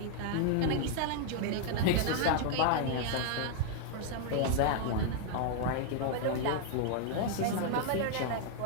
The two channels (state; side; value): different; both; correlation 0.00